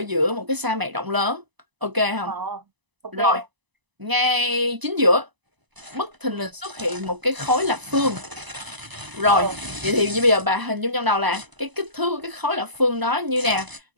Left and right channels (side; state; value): left; late; 1.0 ms